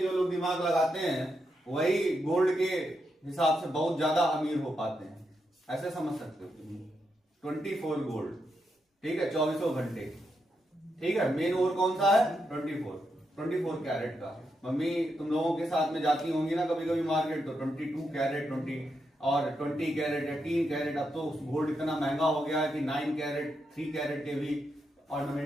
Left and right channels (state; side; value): normal; both; correlation 0.83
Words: जो लोग दिमाग लगाते हैं वही गोल्ड के हिसाब से बहुत ज्यादा अमीर हो पाते हैं, ऐसे समझ सकते हो। 24 गोल्ड, ठीक है, 24 घंटे, ठीक है। मेन ओर कौन सा है, 24 कैरेट का। मम्मी तुम लोगों के साथ में जाती होंगी ना कभी कभी मार्केट, तो 22 कैरेट 20 कैरेट या 3 कैरेट। अब तो गोल्ड इतना महंगा हो गया है कि 9 कैरेट 3 कैरेट के भी